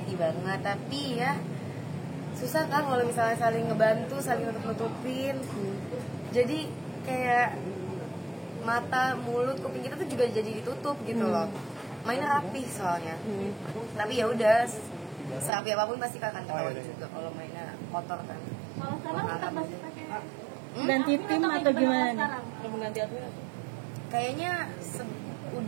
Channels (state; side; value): drops out; left; at 15.5 s